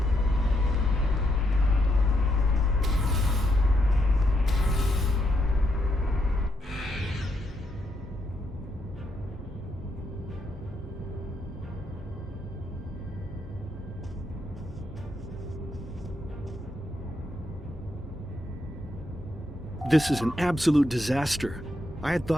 This is an absolute disaster. I had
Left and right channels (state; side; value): normal; both; correlation 0.78